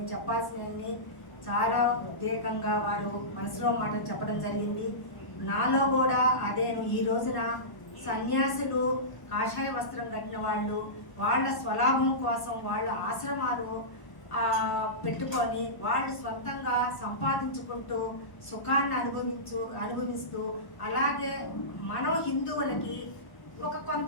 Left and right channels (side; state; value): right; late; 1.0 ms